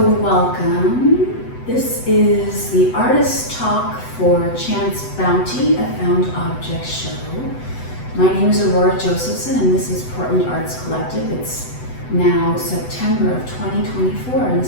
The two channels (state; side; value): late; right; 8.0 ms